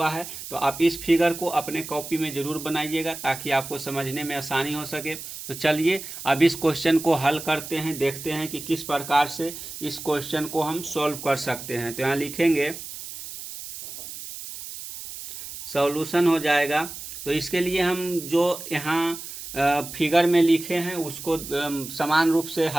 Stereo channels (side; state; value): right; noise; hiss, 11 dB below the sound